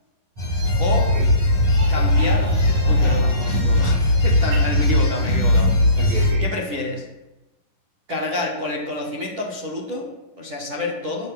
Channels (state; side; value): late; left; 10 ms